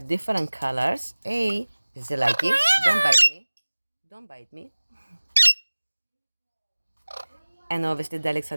colors. Hey, is it lucky? Don't bite me. Don't bite me. And obviously the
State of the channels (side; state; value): both; inverted; correlation -1.00